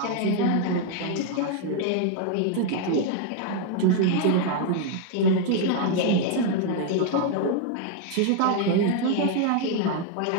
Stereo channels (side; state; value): both; different; correlation 0.00